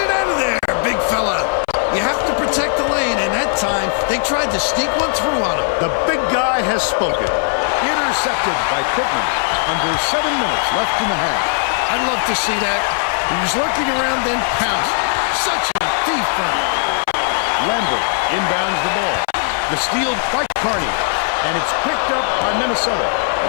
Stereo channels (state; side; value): silent; right; 59 dB below the other